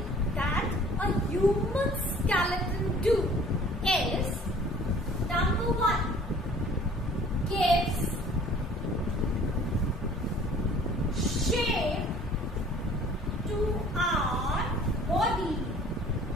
that a human skeleton do is, number one, gives shape to our body.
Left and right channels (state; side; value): normal; both; correlation 0.51